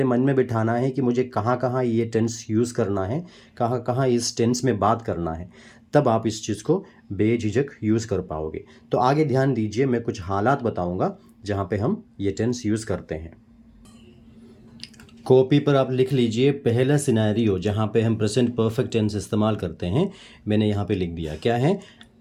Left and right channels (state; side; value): identical; both; correlation 1.00